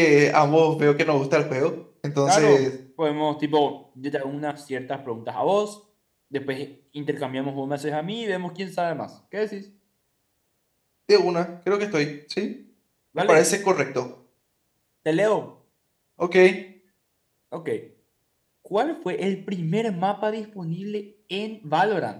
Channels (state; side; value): identical; both; correlation 1.00